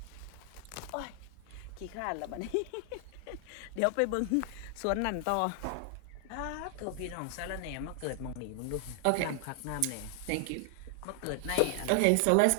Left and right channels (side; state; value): both; different; correlation 0.00